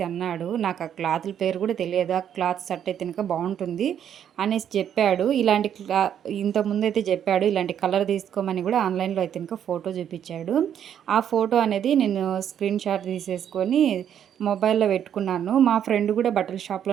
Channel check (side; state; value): left; quieter; 9.3 dB